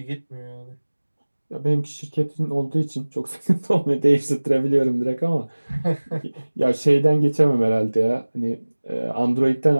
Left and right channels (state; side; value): inverted; both; correlation -1.00